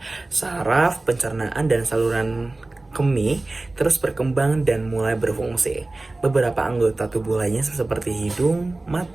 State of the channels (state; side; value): quieter; left; 3.0 dB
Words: saraf, pencernaan, dan saluran kemih terus berkembang dan mulai berfungsi. Beberapa anggota tubuh lainnya seperti hidung,